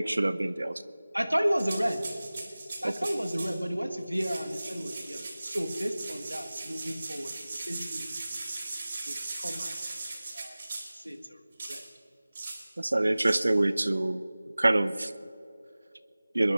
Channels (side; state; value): both; inverted; correlation -0.98